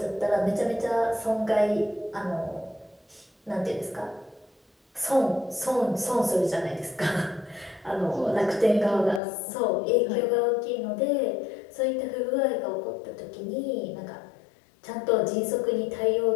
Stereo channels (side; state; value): right; drops out; at 9.2 s